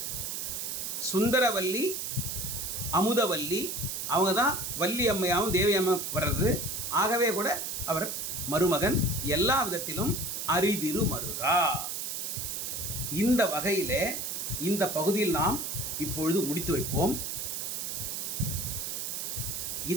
சுந்தரவல்லி, அமுதவல்லி, அவங்க தான் வள்ளி அம்மையாகவும் தேவி அம்மா வர்றது. ஆகவே கூட அவர் மருமகன். எல்லா விதத்திலும் அரிதிரு மருகா. இந்த வகையில் இந்த பகுதியில் நாம் இப்பொழுது முடித்து வைப்போம்.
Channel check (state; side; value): noise; right; hiss, 4 dB below the sound